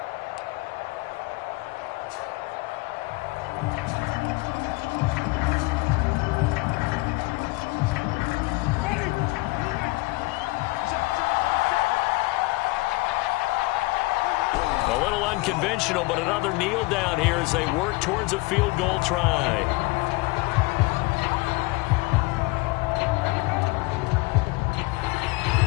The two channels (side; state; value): right; quieter; 23.3 dB